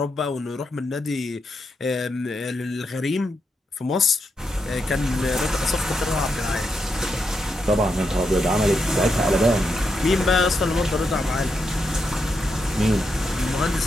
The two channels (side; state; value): both; normal; correlation 0.83